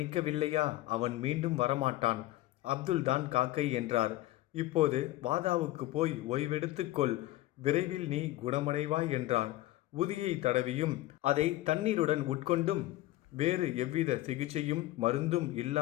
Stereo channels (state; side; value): quieter; right; 16.5 dB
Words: அவன் மீண்டும் வரமாட்டான். அப்துல் தான் காக்கை என்றார். இப்போது வாதாவுக்கு போய் ஓய்வெடுத்துக்கொள். விரைவில் நீ குணமடைவாய் என்றார். உதியை தடவியும் அதை தண்ணீருடன் உட்கொண்டும் வேறு எவ்வித சிகிச்சையும் மருந்தும்